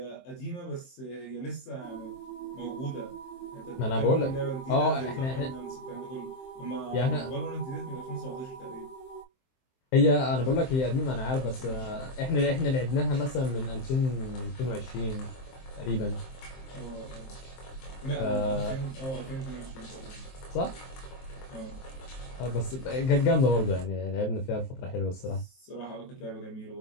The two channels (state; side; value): late; right; 23 ms